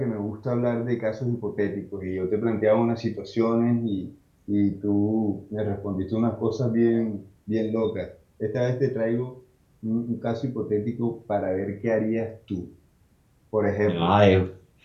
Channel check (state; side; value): identical; both; correlation 1.00